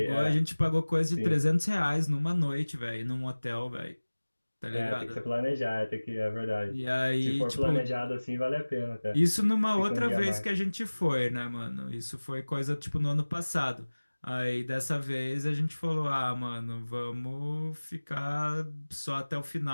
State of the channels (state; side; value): inverted; both; correlation -1.00